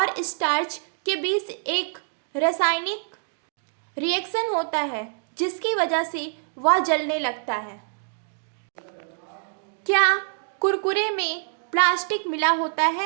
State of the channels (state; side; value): silent; left; digital silence